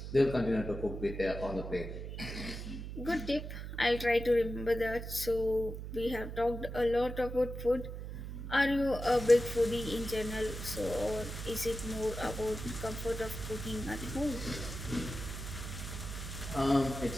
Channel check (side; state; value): right; noise; hum, 8 dB below the sound